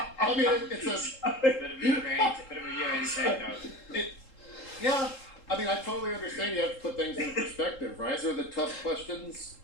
I mean, it's a Bit of a UA take note. yeah. I mean, I totally understand you have to put things in perspective, right? These are the tough questions,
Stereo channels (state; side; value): late; right; 3.7 ms